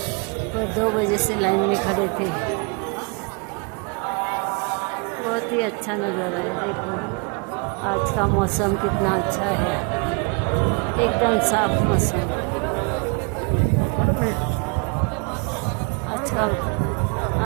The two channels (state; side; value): quieter; left; 32.9 dB